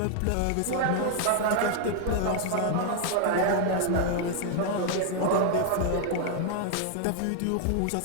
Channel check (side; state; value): both; different; correlation 0.00